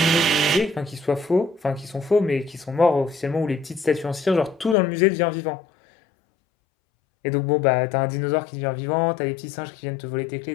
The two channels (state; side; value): drops out; right; at 4.8 s